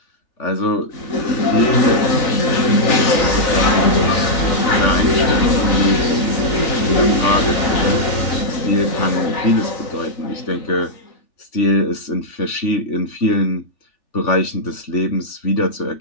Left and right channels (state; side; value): late; right; 3.4 ms